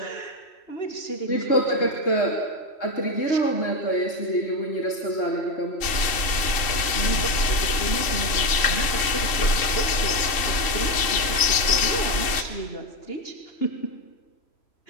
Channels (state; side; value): late; right; 3.0 ms